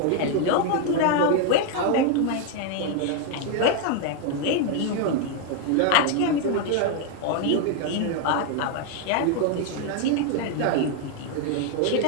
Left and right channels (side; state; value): both; different; correlation 0.01